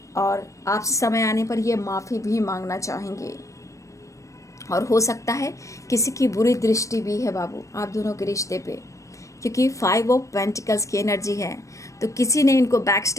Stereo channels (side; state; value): right; late; 0.15 ms